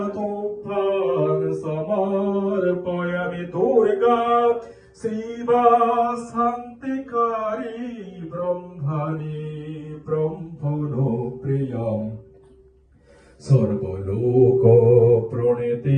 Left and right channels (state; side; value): identical; both; correlation 1.00